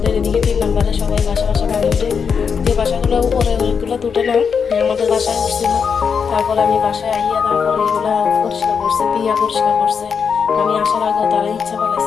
এদিকে 3 নম্বরে সবাই বাসা পানি উঠে। যে বাসাগুলো উপরে ওইগুলো তুটে না, আমাদের বাসায় উঠছিল। তারপরে আমি বাসায় আইয়া তারপরে এগুলো পরিষ্কার করছে, পিয়া পরিষ্কার করছে। আমি আসার আগে তারা ইচ্ছা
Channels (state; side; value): quieter; right; 6.3 dB